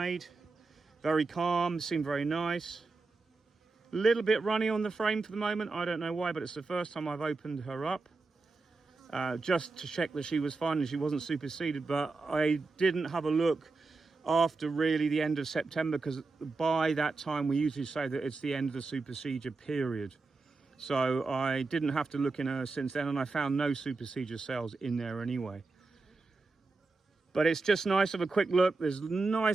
Very calm, seem very nice. A little bit runny on the frame for the moment. I don't know why, but it's the first time I've opened her up. Just to check that she was fine and she wasn't superseded, but I didn't have a look after really the end of September, because by that time we usually say that it's the end of the supersedure period. So I didn't have to look in her since then, and I found no supersedure cells in there anyway. But it's just nice to have a quick look. There's a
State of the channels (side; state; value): left; quieter; 3.8 dB